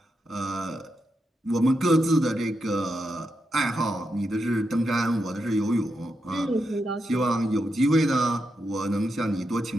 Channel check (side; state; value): both; normal; correlation 0.85